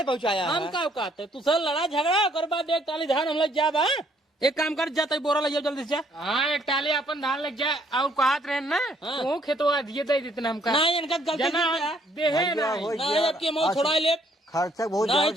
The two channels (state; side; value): normal; both; correlation 0.66